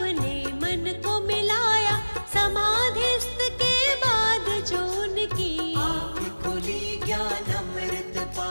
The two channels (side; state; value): both; inverted; correlation -1.00